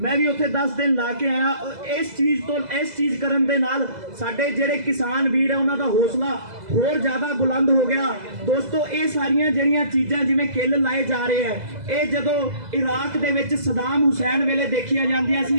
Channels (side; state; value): left; late; 2.0 ms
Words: ਮੈਂ ਵੀ ਉੱਥੇ 10 ਦਿਨ ਲਾ ਕੇ ਆਇਆ ਇਸ ਚੀਜ਼ ਕਰਨ ਦੇ ਨਾਲ ਸਾਡੇ ਜਿਹੜੇ ਕਿਸਾਨ ਵੀਰ ਆ ਉਹਨਾਂ ਦਾ ਹੌਸਲਾ ਹੋਰ ਜ਼ਿਆਦਾ ਬੁਲੰਦ ਹੋ ਗਿਆ ਦੋਸਤੋ ਇਹ ਸਾਰੀਆਂ ਜਿਹੜੀਆਂ ਚੀਜ਼ਾਂ ਜਿਵੇਂ ਕਿੱਲ ਲਾਏ ਜਾ ਰਹੇ ਆ ਇਹ ਜਦੋਂ ਇਰਾਕ ਦੇ ਵਿੱਚ ਸਦਾਮ ਹੁਸੈਨ ਵੇਲੇ ਦੇਖੀਆਂ ਜਾਂਦੀਆਂ ਸੀ